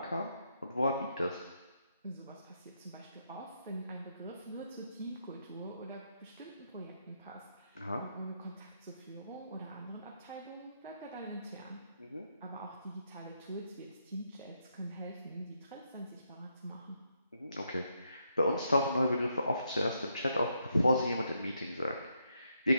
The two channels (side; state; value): both; inverted; correlation -0.78